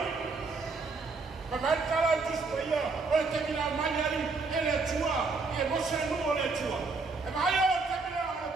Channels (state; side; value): quieter; left; 4.1 dB